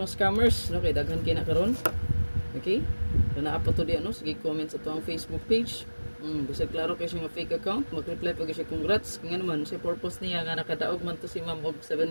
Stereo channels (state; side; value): inverted; both; correlation -1.00